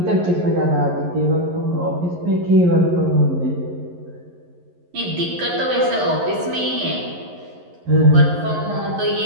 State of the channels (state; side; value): late; left; 11 ms